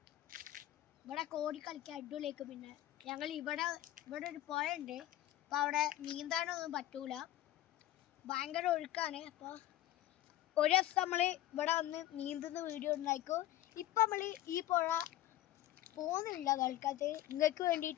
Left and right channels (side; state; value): right; quieter; 14.2 dB